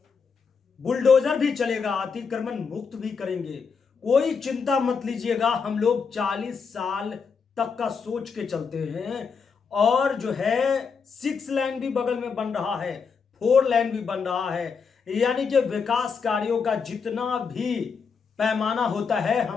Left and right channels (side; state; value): right; quieter; 5.7 dB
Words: बुलडोजर भी चलेगा, अतिक्रमण मुक्त भी करेंगे, कोई चिंता मत लीजिएगा। हम लोग 40 साल तक का सोच के चलते हैं और जो है 6 लेन भी बगल में बन रहा है, 4 लेन भी बन रहा है, यानी कि विकास कार्यों का जितना भी पैमाना होता है